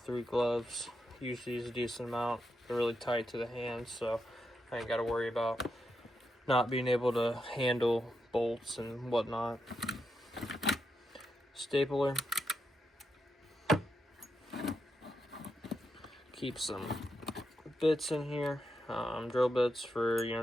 gloves. Use these a decent amount. They're really tight to the hands, so I ain't got to worry about not being able to handle bolts and whatnot. Stapler. Keep some bits in here. Drill bits for,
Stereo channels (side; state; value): both; normal; correlation 0.84